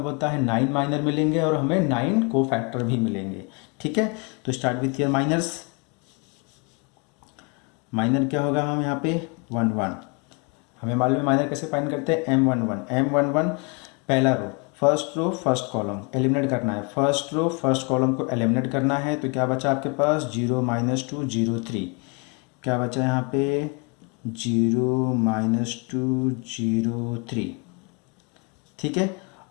होता है 9 माइनर मिलेंगे और हमें 9 कोफैक्टर भी मिलेंगे। ठीक है, तो start with year minors. Minor क्या होगा, हम यहाँ पे 1 1, हमें मालूम है माइनर कैसे फाइंड करते हैं M11 पहला row, first row first column eliminate करना है। फर्स्ट रो फर्स्ट कॉलम को एलिमिनेट करना है, तो क्या बचा आपके पास 0 -2 0 3। क्या बचा यहाँ पे 0 -2 0 3। ठीक है,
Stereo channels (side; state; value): right; quieter; 32.6 dB